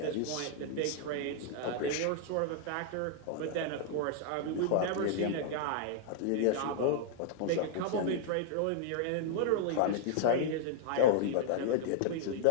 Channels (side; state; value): both; different; correlation -0.01